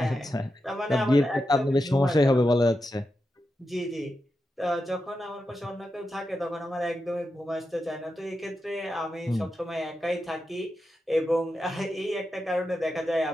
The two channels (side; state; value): both; normal; correlation 0.88